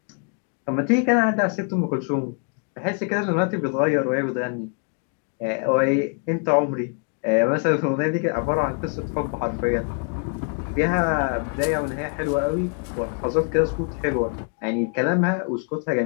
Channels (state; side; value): quieter; right; 39.1 dB